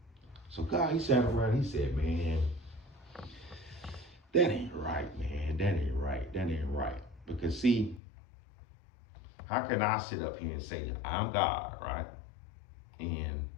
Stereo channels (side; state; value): right; drops out; at 8.0 s